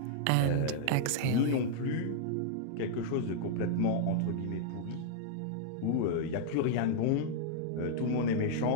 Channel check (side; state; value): both; different; correlation -0.01